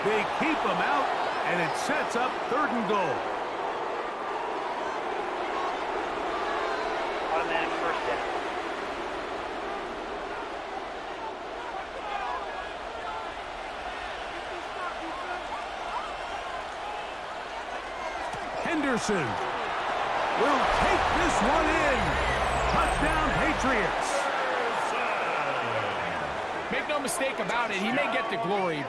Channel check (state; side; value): identical; both; correlation 1.00